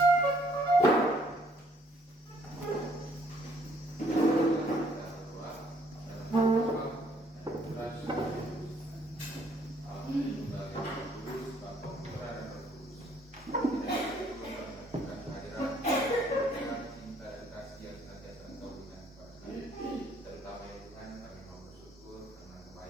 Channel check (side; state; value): both; normal; correlation 0.65